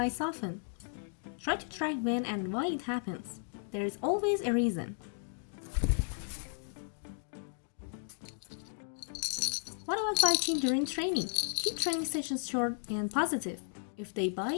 often? Try to track when and why it happens. There is always a reason. What about biting during training? Keep training sessions short and positive. If they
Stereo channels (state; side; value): silent; right; digital silence